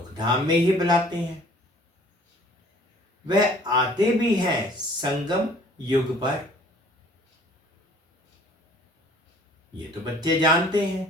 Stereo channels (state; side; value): normal; both; correlation 0.54